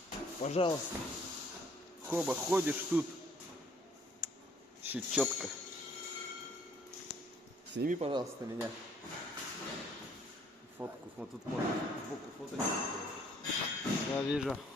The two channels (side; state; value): both; normal; correlation 0.61